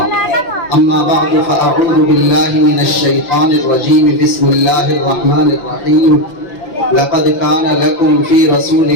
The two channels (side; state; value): right; late; 5.9 ms